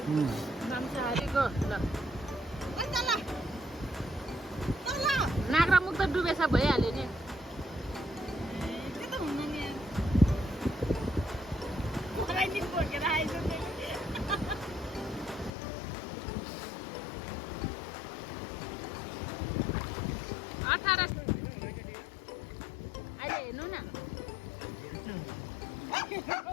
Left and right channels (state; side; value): drops out; right; at 15.6 s